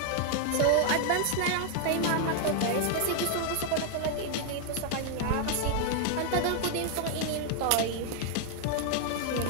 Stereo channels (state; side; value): different; both; correlation 0.00